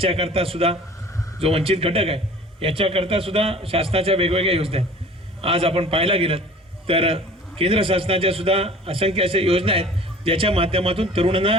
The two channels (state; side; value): normal; both; correlation 0.46